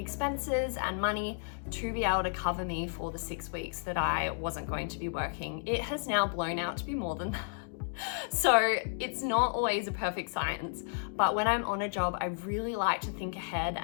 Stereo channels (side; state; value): right; silent; digital silence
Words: and money to be able to cover me for the 6 weeks that I wasn't going to be working. It has now blown out to be more than that. So it's not always a perfect science, but when I'm on a job, I really like to think ahead